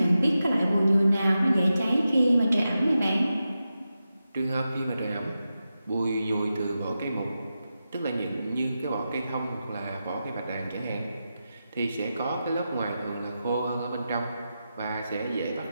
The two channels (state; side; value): inverted; both; correlation -0.90